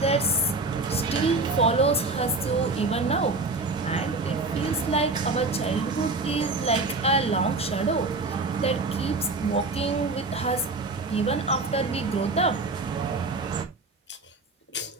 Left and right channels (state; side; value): quieter; left; 3.4 dB